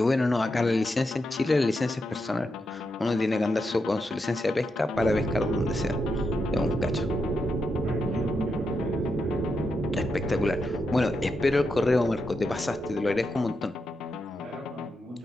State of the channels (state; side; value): normal; both; correlation 0.85